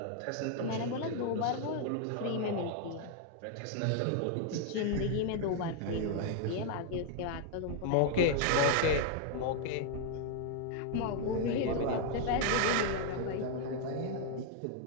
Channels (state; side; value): different; both; correlation 0.00